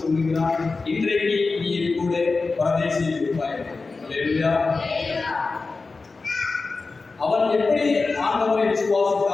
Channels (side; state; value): right; quieter; 4.0 dB